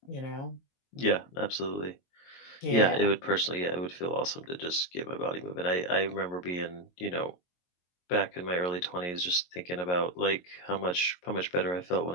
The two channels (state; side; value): late; right; 22 ms